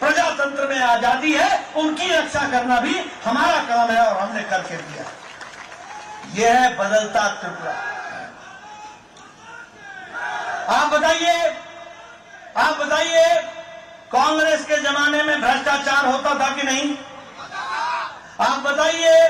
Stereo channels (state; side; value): identical; both; correlation 1.00